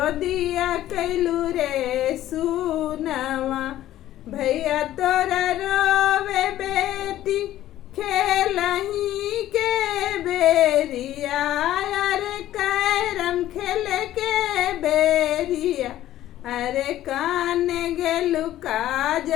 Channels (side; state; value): right; quieter; 13.5 dB